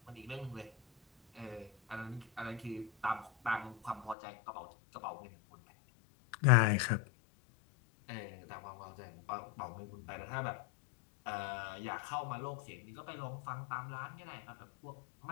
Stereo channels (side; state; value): right; drops out; at 4.2 s